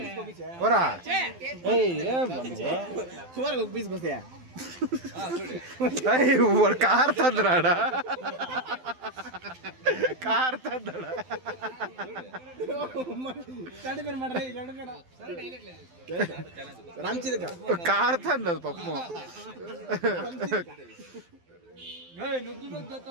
ఓరా ఏం వాడు కార్ తందరాడా కార్ తందడా కార్ తందదు పప్పు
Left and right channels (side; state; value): left; late; 12 ms